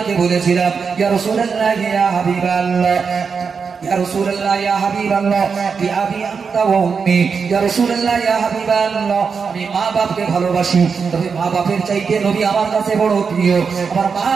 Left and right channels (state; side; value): quieter; left; 5.6 dB